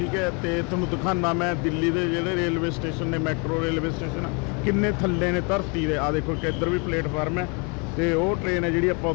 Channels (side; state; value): right; quieter; 33.4 dB